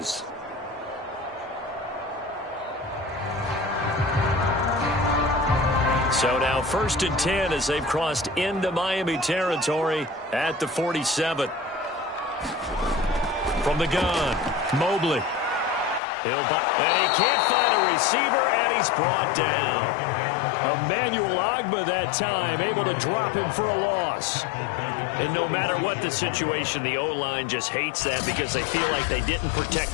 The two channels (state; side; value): drops out; right; at 16.0 s